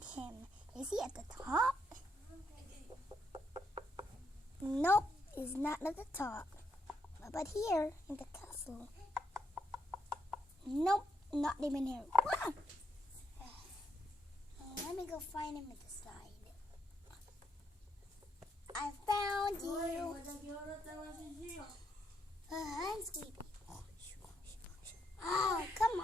him. Is he at the top? Nope, he's not at the top. But here, in the castle. Nope, not even here. Ah! Let me go find him at the side. I found you. I'm sleepy. Oh, come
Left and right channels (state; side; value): normal; both; correlation 0.77